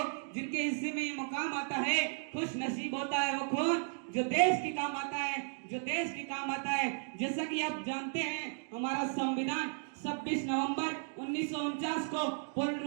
जिनके हिस्से में ये मुकाम आता है। खुश नसीब होता है वो खून जो देश के काम आता है, जो देश के काम आता है। जैसा कि आप जानते हैं, हमारा संविधान 26 नवंबर 1949 को पूर्ण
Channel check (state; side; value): silent; left; 55 dB below the other